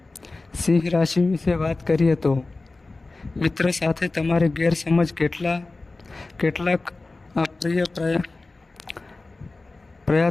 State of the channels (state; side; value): quieter; right; 3.3 dB